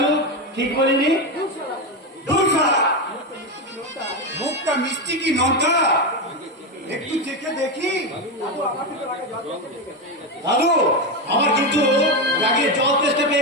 ঠিক বলিনি? মুখটা মিষ্টি কি নটা একটু চেখে দেখি। দাদু আমার কিন্তু রাগে জল টেস্টে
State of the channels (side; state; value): both; normal; correlation 0.12